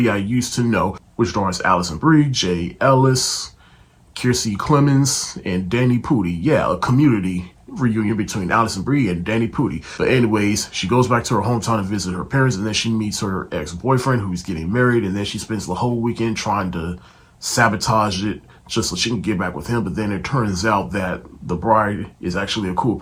I Used to Know, which stars Alison Brie, Jay Ellis, Kiersey Clemens, and Danny Pudi. Yeah, a Community reunion between Alison Brie and Danny Pudi. But anyways, she goes back to her hometown to visit her parents, and then she meets her ex-boyfriend who's getting married, and then she spends the whole weekend trying to sabotage it just so she can get back with him. But then it turns out that the bride is actually a cool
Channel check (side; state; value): both; identical; correlation 1.00